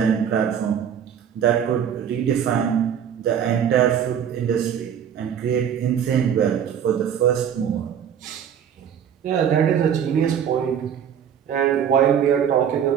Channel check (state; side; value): quieter; left; 8.6 dB